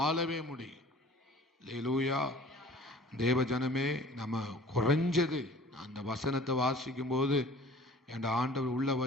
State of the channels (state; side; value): normal; both; correlation 0.48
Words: முடியும். அல்லேலூயா. தேவ ஜனமே, நம்ம குறைஞ்சது அந்த வசனத்தை வாசிக்கும் போது என் ஆண்டவர் உள்ள